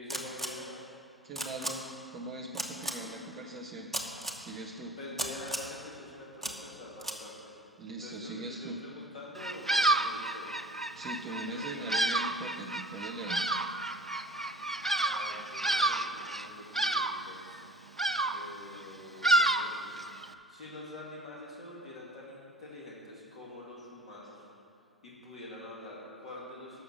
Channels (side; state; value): both; normal; correlation 0.45